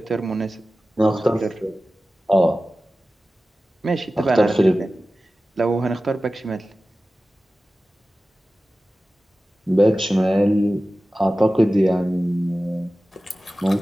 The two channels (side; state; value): both; normal; correlation 0.96